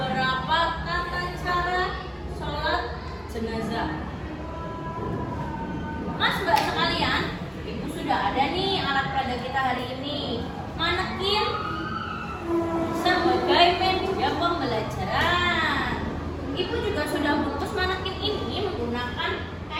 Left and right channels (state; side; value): identical; both; correlation 1.00